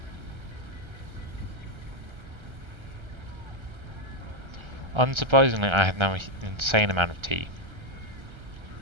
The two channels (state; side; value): late; left; 1.3 ms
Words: Unsurprisingly, I have now an insane amount of tea.